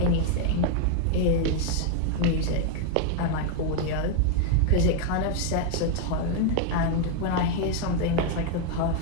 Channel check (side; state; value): both; different; correlation 0.00